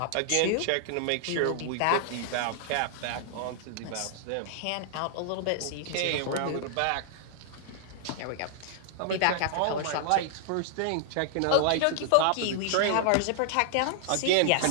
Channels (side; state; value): both; different; correlation -0.01